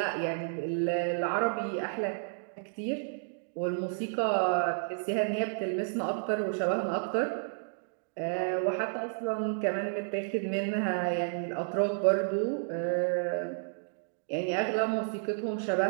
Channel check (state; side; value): silent; left; digital silence